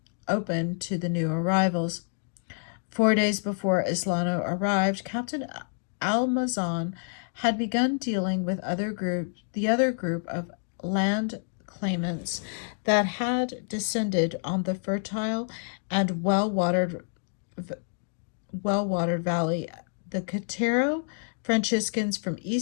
open to the new arrivals. 4 days before Islano arrived, Captain Almazan had begun dealing with the other group of land claimants that had descended on the fertile and well-watered valley. The Cotero Franciscans from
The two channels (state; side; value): silent; right; digital silence